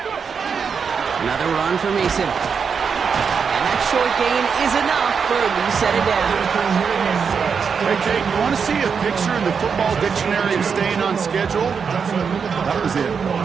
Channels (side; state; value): left; quieter; 6.1 dB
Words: Another run for Mason. And that short gain is enough for a new set of downs. Hey, Kate, you want to see a picture in the football dictionary of staying on schedule? That was it.